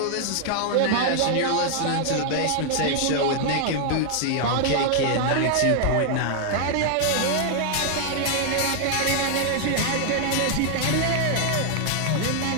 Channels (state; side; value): different; both; correlation 0.00